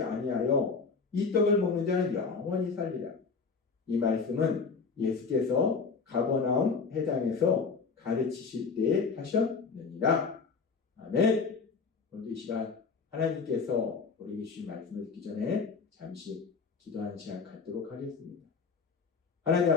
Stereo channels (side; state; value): right; quieter; 5.0 dB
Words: 아니하여 이 떡을 먹는 자는 영원히 살리라. 이 말씀은 예수께서 가버나움 회당에서 가르치실 때에 하셨느니라. 아멘. 오늘 이 시간 하나님께서 우리에게 주신 말씀을 듣기 전에 잠시 기도하는 시간 갖도록 하겠습니다. 하나님